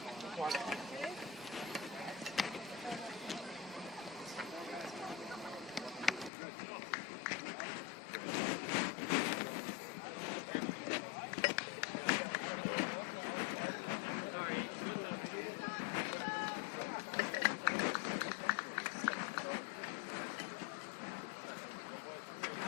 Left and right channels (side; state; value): right; drops out; at 6.3 s